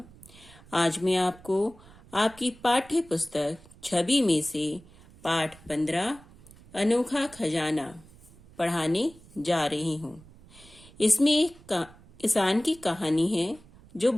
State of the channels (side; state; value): right; noise; rumble, 23 dB below the sound